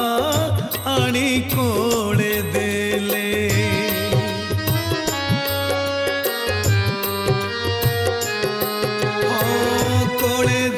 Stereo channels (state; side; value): identical; both; correlation 1.00